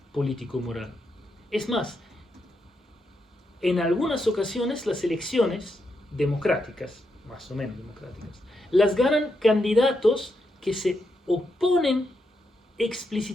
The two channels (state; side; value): normal; both; correlation 0.82